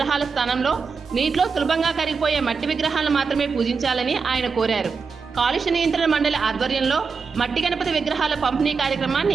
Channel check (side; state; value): left; quieter; 5.2 dB